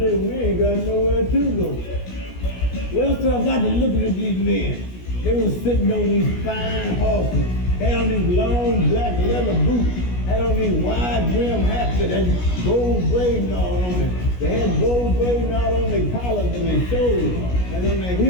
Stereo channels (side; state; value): right; late; 17 ms